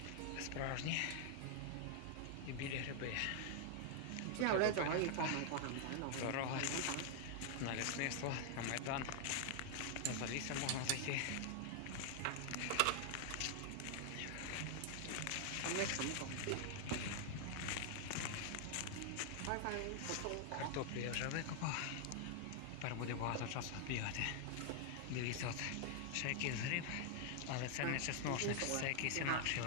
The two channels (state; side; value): different; both; correlation 0.00